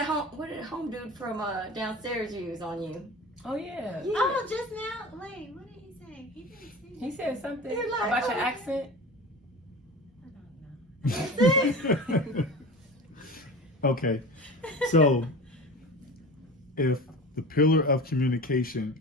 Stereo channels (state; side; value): normal; both; correlation 0.33